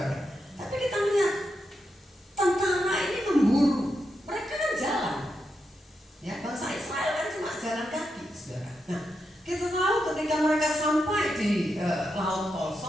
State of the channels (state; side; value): normal; both; correlation 0.85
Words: Tapi kita lihat tentara ini memburu. Mereka kan jalan. Ya, bangsa Israel kan cuma jalan kaki, saudara. Nah, kita tahu ketika mereka sampai di Laut Tol